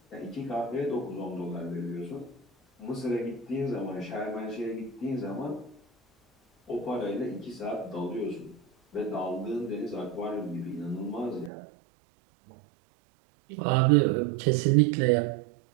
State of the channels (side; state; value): left; drops out; at 11.5 s